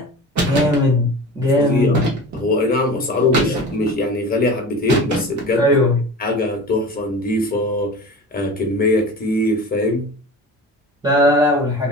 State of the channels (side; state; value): both; normal; correlation 0.35